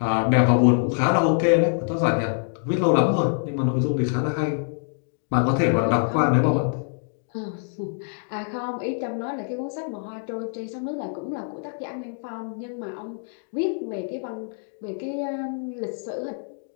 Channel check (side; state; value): right; silent; 62 dB below the other